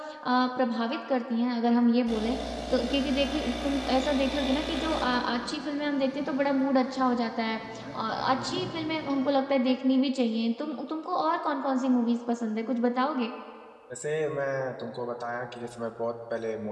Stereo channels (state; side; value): identical; both; correlation 1.00